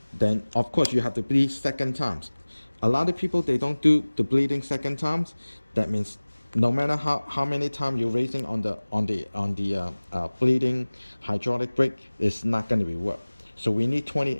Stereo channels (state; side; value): inverted; both; correlation -1.00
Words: then of course you have to bleed 2nd times. A lot of people, they don't do the bleeding 2nd times. That means no matter how many times you're raising on the bleeding hydraulic brake, it's not going to be work. So we need 20